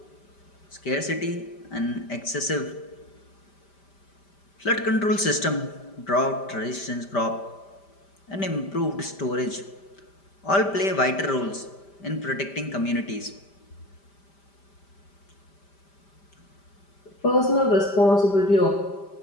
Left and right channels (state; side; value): late; right; 5.1 ms